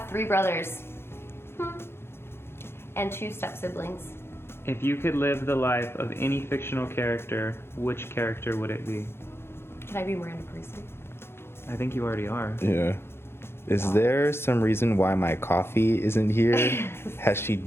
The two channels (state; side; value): late; right; 0.12 ms